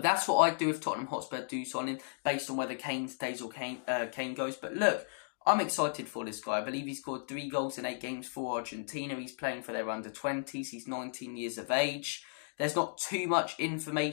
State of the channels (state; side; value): silent; right; digital silence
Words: that's what I'd do if Tottenham Hotspur do sign him, based on whether Kane stays or Kane goes. But look, I'm excited for this guy. I believe he scored 3 goals in 8 games for Argentina. He's playing for their under-20s. He's 19 years of age. There's not too much